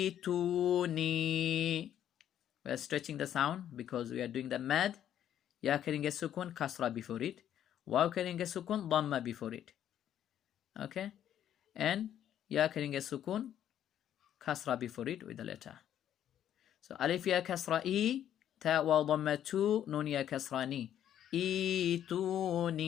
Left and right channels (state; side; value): quieter; right; 10.6 dB